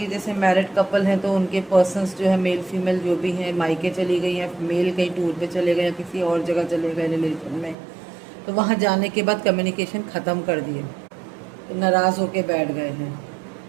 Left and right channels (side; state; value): left; drops out; at 7.8 s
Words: जैसे मैरिड कपल हैं तो उनके पर्सन्स जो है मेल फीमेल जो भी हैं मायके चली गई हैं, मेल कहीं टूर पे चले गए या किसी और जगह चले गए रिलेशन में, तो वहाँ जाने के बाद कम्युनिकेशन ख़त्म कर दिए, तो नाराज़ होके बैठ गए हैं।